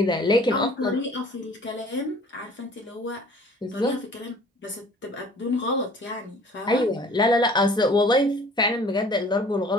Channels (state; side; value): normal; both; correlation 0.51